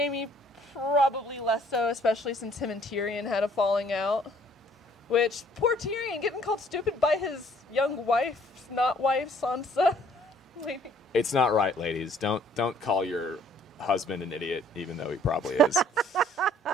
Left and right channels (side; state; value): both; normal; correlation 0.60